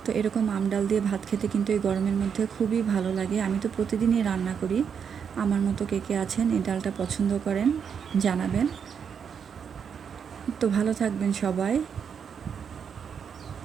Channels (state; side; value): quieter; left; 7.1 dB